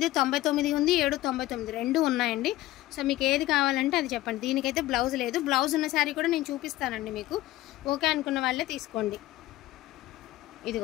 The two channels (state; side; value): quieter; right; 16.3 dB